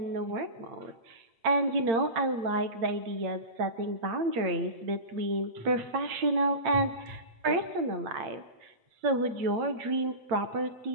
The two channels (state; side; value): late; left; 8.8 ms